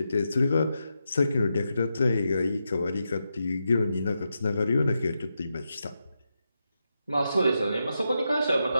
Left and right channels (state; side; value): inverted; both; correlation -0.87